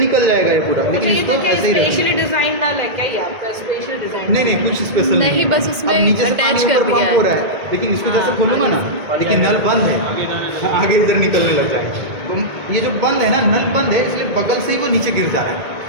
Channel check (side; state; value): left; late; 1.9 ms